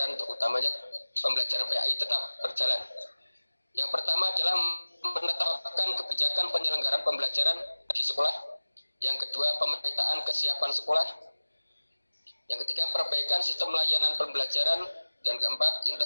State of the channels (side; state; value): both; inverted; correlation -1.00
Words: utamanya pembelajaran PAI, tetap berjalan. Yang pertama adalah menetapkan kebijakan penyelenggaraan pembelajaran di sekolah. Yang kedua, pemetaan kesiapan sekolah. Yang ketiga, perbaikan sistem layanan pembelajaran. Dan keempat,